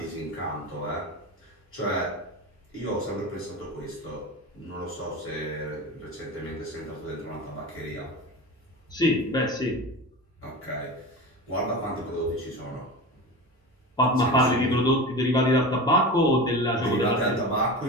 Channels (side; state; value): both; normal; correlation 0.28